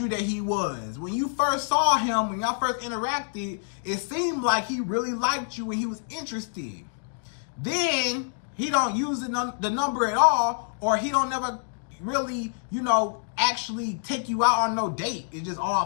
that he was? When you first saw him, when y'all first interacted, it seemed like he really liked you and he was interested. Then he don't use the number at all, or he don't never really, you know, actually take you out on no date. It's just all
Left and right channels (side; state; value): right; silent; digital silence